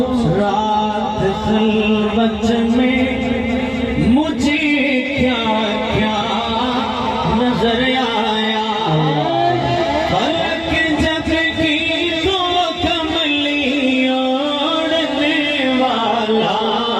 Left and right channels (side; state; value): both; identical; correlation 1.00